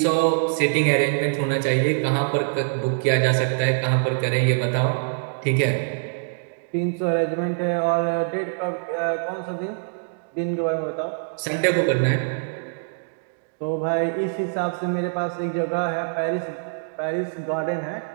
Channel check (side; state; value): left; silent; digital silence